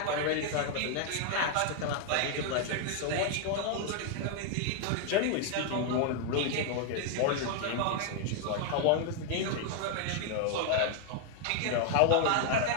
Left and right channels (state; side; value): different; both; correlation 0.00